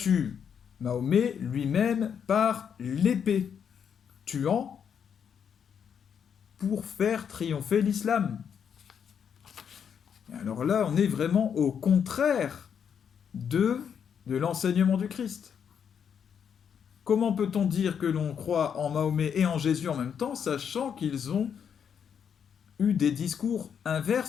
Mahomet lui-même par l'épée, tuant pour faire triompher l'islam. Alors là, on est vraiment au contraire de l'enseignement du Christ. Comment peut-on dire que l'on croit en Mahomet et en Jésus en même temps, sachant qu'ils ont eu des discours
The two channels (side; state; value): right; quieter; 7.7 dB